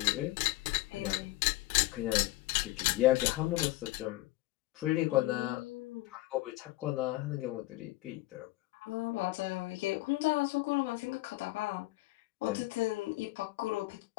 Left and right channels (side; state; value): right; quieter; 18.5 dB